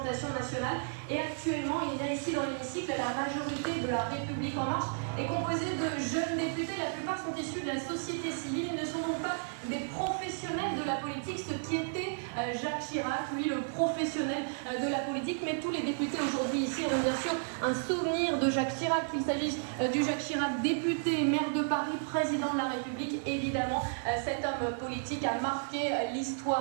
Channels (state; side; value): silent; left; digital silence